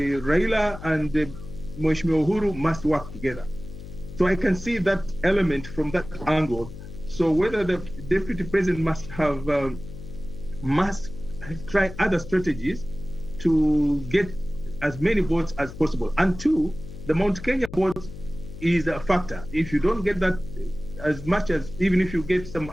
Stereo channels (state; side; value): noise; left; hum, 13 dB below the sound